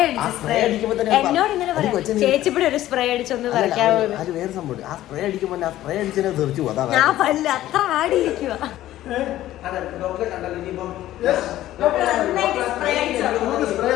എന്നോട് ഇങ്ങനെ പറയാം, ചേച്ചിപ്പിടെ ഒരു സ്പ്രേ അടിച്ചൊന്ന് പറിക്കാവോ? ഞാൻ പല്ല് അത്ര ആടിയിരിക്കുക.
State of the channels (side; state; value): right; quieter; 14.1 dB